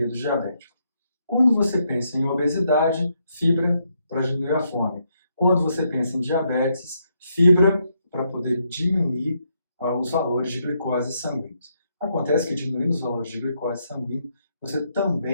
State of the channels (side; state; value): both; inverted; correlation -0.77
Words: diabéticos. Quando você pensa em obesidade, fibra para diminuir a fome. Quando você pensa em diabetes, fibra para poder diminuir os valores de glicose sanguíneos. Acontece que diminuindo os valores de glicose sanguínea, você